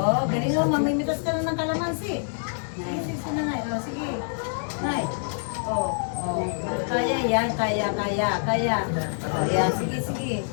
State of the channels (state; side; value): silent; right; digital silence